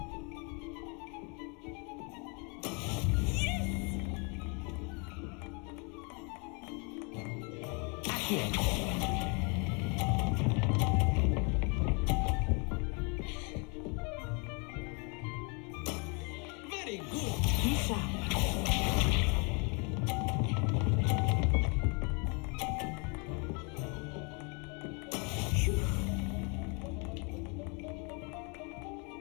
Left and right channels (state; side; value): quieter; right; 33.6 dB